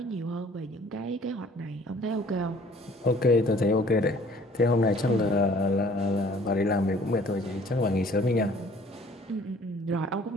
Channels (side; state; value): both; normal; correlation 0.54